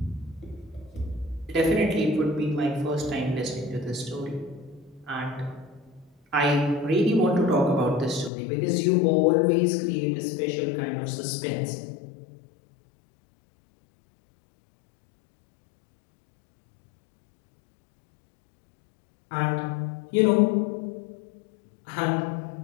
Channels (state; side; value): drops out; right; at 8.3 s